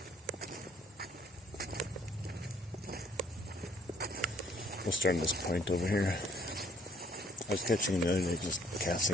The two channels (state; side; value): normal; both; correlation 0.61